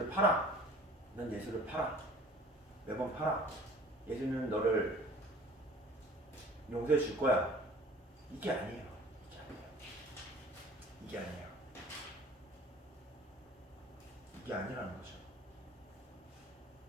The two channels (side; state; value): both; normal; correlation 0.48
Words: 팔아. 넌 예수를 팔아. 매번 팔아. 예수는 너를 용서해 줄 거야. 이게 아니에요. 이게 아니라는 거죠.